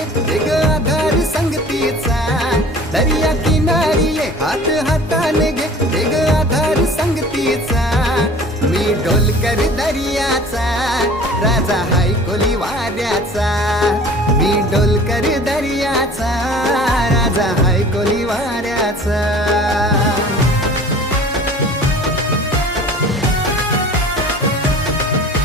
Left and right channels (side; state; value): both; normal; correlation 0.45